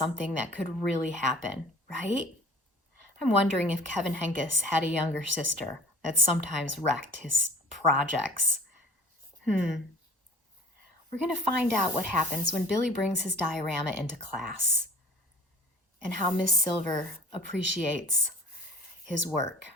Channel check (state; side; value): normal; both; correlation 0.47